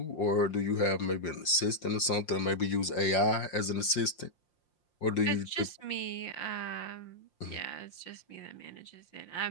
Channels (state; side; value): late; right; 5.7 ms